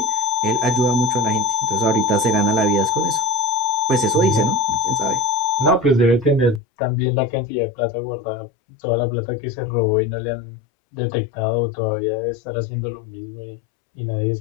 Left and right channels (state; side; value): drops out; right; at 6.6 s